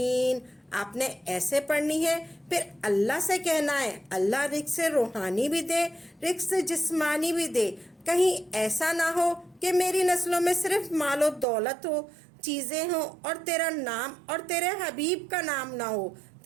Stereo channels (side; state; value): left; drops out; at 11.5 s